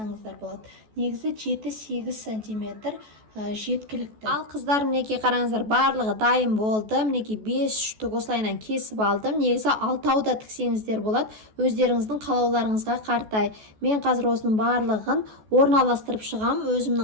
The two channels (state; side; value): late; left; 14 ms